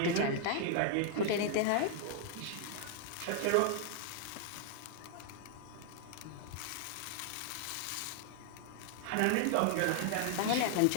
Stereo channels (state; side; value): different; both; correlation 0.00